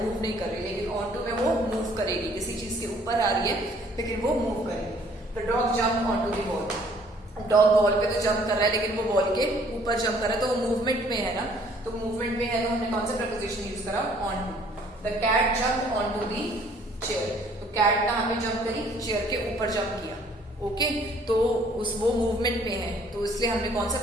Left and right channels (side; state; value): both; normal; correlation 0.59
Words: मूव नहीं कर रही. लेकिन ऑन टू में वो मूव करेगी, किसी चीज के ऊपर आ रही है लेकिन वो मूव करेगी. The dog jump on to the ball, dog ball पे तो जंप कर रहा है लेकिन वो बॉल के ऊपर जंप कर रहा है, तो वो मूवमेंट में है ना. तो मूवमेंट में है तो हमने कौन सा प्रपोजिशन यूज करा, on to. The cat jump on to the chair, तो कैट कहाँ पे जंप करी, चेयर के ऊपर जंप किया. ओके, तो वो मूवमेंट में है तो इसलिए हमने कौन सा